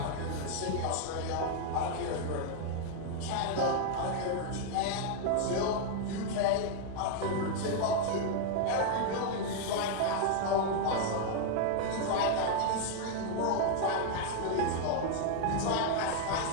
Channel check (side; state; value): both; different; correlation 0.00